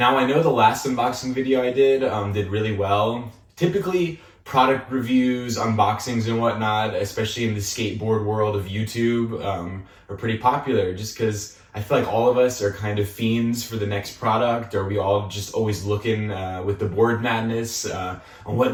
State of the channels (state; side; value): identical; both; correlation 1.00